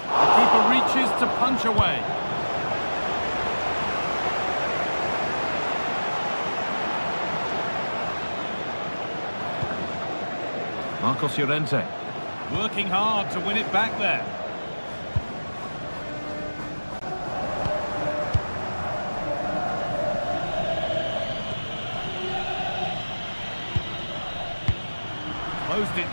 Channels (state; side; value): inverted; both; correlation -1.00